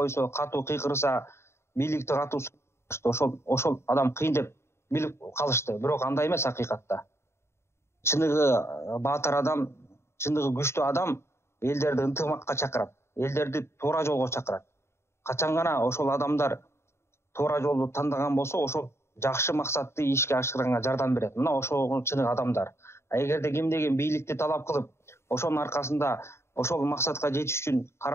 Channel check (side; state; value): right; late; 0.13 ms